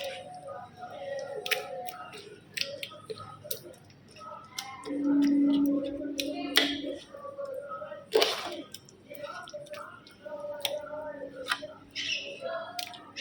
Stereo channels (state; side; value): identical; both; correlation 1.00